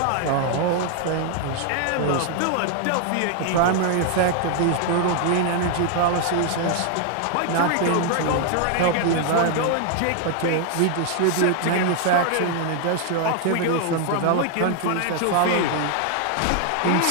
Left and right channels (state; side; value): different; both; correlation 0.00